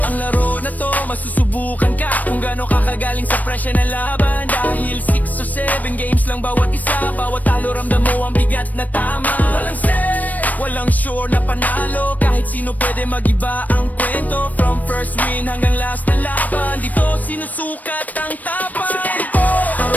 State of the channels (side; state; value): right; late; 0.079 ms